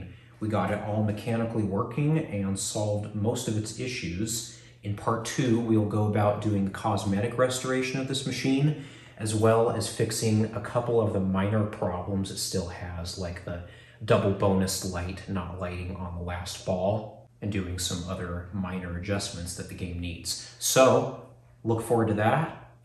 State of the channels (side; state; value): both; identical; correlation 1.00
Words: We got it all mechanically working and solved most of its issues. In part 2, we'll go about doing the cosmetic restoration of this machine, as well as fixing a couple of the minor problems it still has, like the double bonus light not lighting on the last ball, and doing some other minor adjustments that the game needs. So look forward to that,